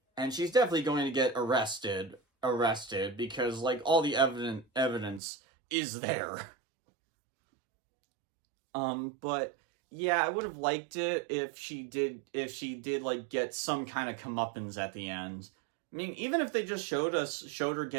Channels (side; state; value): left; drops out; at 5.2 s